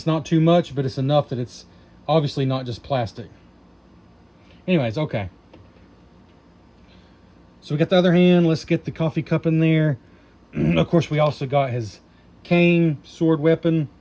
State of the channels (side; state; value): both; identical; correlation 1.00